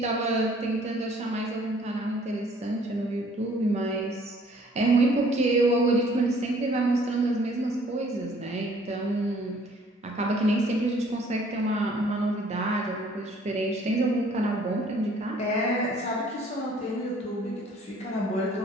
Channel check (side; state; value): both; normal; correlation 0.58